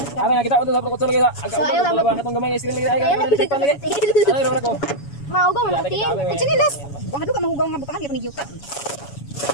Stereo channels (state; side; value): late; right; 7.1 ms